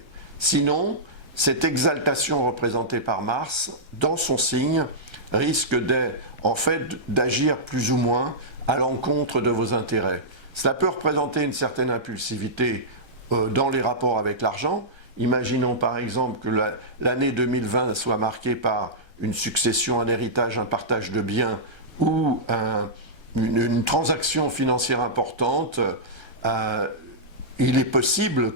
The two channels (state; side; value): late; left; 1.3 ms